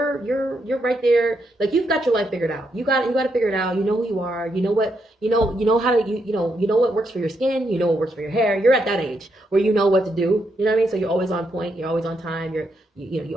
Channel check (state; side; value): normal; both; correlation 0.80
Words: right there. Like you've got your life figured out. You got to figure it out. You know who you are. You know what you know how to you know what works for your skin. You know what works for your hair. You're at that age where you know what to do. You know what I mean? So you're always on point. You're always on time. You